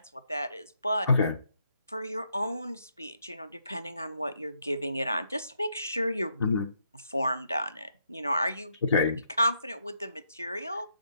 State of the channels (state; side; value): inverted; both; correlation -0.77